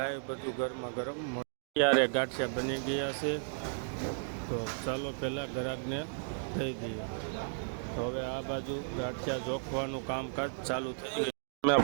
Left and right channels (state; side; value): silent; left; digital silence